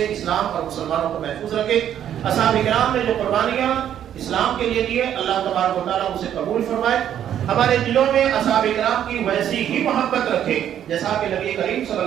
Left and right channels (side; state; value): left; quieter; 10.2 dB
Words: اسلام اور مسلمانوں کو محفوظ رکھے۔ اصحاب کرام نے جو قربانیاں اسلام کے لیے دیے، اللہ تبارک و تعالیٰ اسے قبول فرمائے، ہمارے دلوں میں اصحاب کرام کی ویسی ہی محبت رکھے جیسا کہ نبی کریم صلی